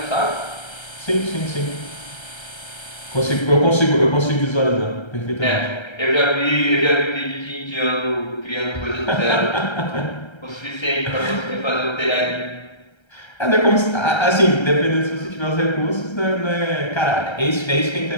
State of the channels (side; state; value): right; late; 1.3 ms